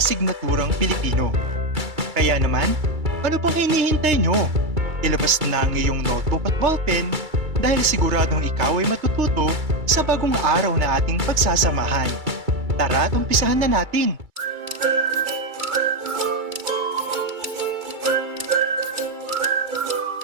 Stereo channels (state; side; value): late; left; 2.3 ms